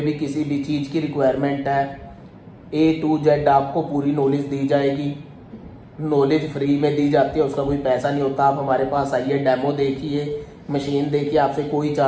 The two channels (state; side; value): identical; both; correlation 1.00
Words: किसी भी चीज़ की रिक्वायरमेंट है, A to Z आपको पूरी नॉलेज दी जाएगी। नॉलेज फ्री में दी जाती है, उसका कोई पैसा नहीं होता। आप हमारे पास आइए, डेमो देखिए, मशीन देखिए, आपसे कोई